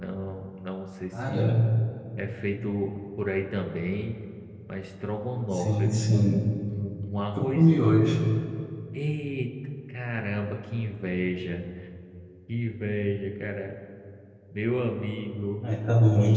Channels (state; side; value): identical; both; correlation 1.00